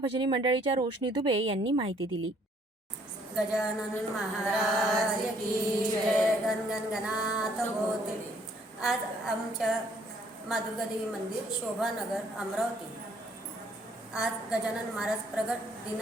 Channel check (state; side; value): normal; both; correlation 0.63